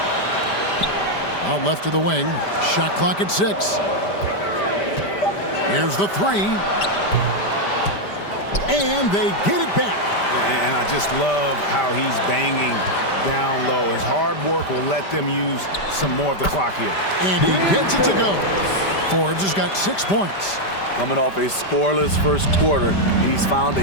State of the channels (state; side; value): late; right; 5.1 ms